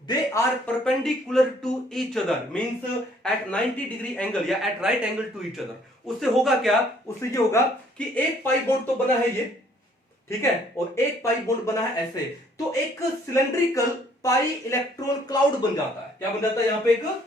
they are perpendicular to each other, means at 90 degree angle या at right angle to each other. उससे होगा क्या, उससे ये होगा कि एक पाई बॉन्ड तो बना है ये, ठीक है, और एक पाई बॉन्ड बना है ऐसे। तो एक सिलेंड्रिकल पाई इलेक्ट्रॉन क्लाउड बन जाता है। क्या बन जाता है, यहां पे एक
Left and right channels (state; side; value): normal; both; correlation 0.62